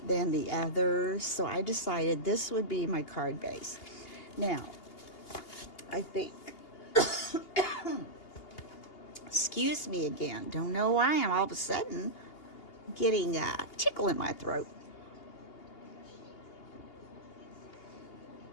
than the others. So I decided this would be my card base. Now, I think, excuse me again, don't know why I'm all of a sudden getting a tickle in my throat.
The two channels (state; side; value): late; right; 2.8 ms